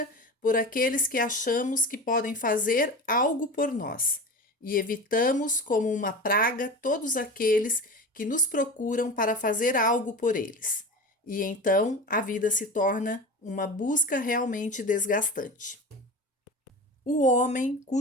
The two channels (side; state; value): both; normal; correlation 0.30